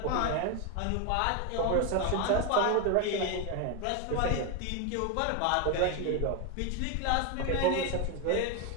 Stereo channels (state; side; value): different; both; correlation 0.02